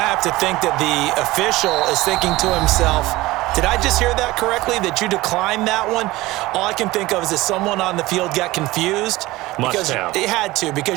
have to think that the official is thinking to himself, did I just hear that correctly, that you declined that one? All I can think of is that someone on the field got confused. Must have. It had to,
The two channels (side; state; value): left; quieter; 19.2 dB